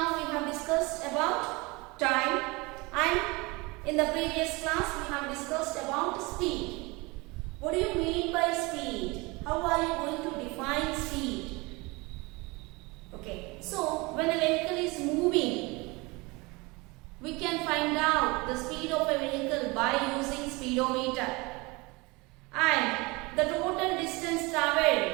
we have discussed about time and in the previous class we have discussed about speed. What do you mean by speed? How are you going to define speed? Okay, so when a vehicle is moving, we can find out the speed of a vehicle by using speedometer and the total distance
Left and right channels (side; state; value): left; quieter; 25.1 dB